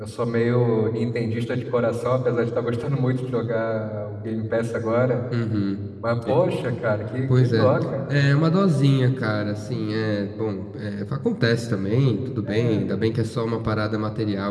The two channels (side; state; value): both; identical; correlation 1.00